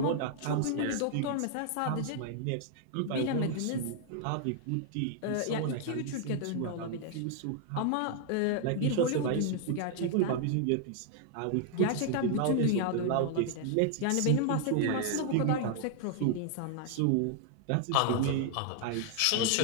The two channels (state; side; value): different; both; correlation 0.00